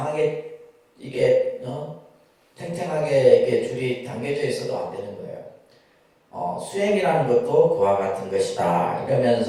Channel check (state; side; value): identical; both; correlation 1.00